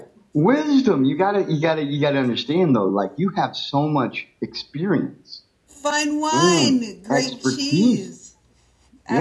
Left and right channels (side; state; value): both; identical; correlation 1.00